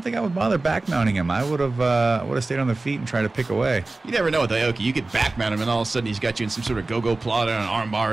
bother back mounting him. I would have stayed on the feet and tried to pick away. You never know with Aoki. You could back mount him, and all of a sudden he's got you in some sort of go-go plot on an arm bar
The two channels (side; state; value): left; quieter; 3.3 dB